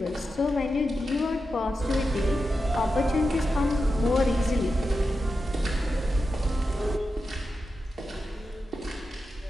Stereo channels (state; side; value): normal; both; correlation 0.90